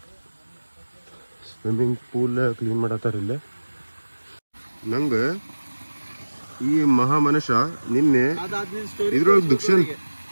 ಸ್ವಿಮ್ಮಿಂಗ್ ಪೂಲ್ ಕ್ಲೀನ್ ಮಾಡತ್ತಾರ ಇಲ್ಲೇ ನಂಗೆ ಈ ಮಹಾ ಮನುಷ್ಯ ನಿನ್ನೆ ಇದ್ರೊಳಗೆ ದುಕ್ಷನ್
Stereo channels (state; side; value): inverted; both; correlation -1.00